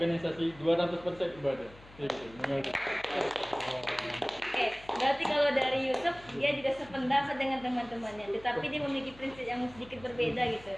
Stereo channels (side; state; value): left; noise; hum, 22 dB below the sound